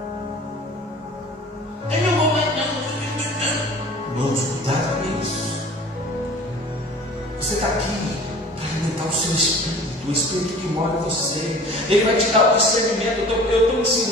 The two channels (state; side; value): normal; both; correlation 0.45